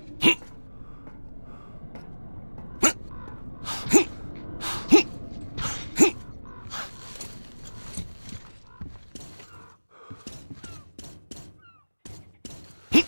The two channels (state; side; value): inverted; both; correlation -1.00